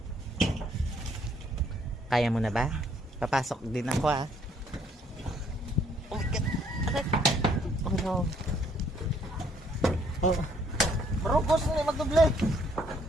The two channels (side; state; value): both; normal; correlation 0.65